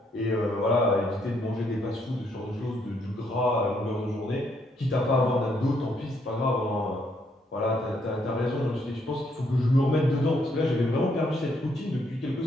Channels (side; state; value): both; normal; correlation 0.72